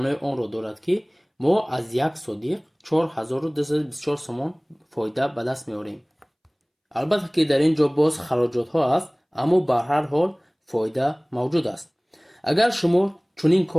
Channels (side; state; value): both; identical; correlation 1.00